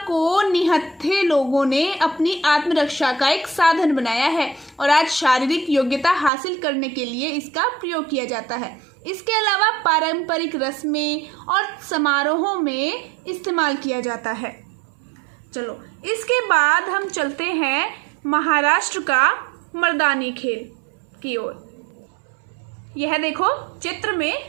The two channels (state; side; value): drops out; left; at 6.3 s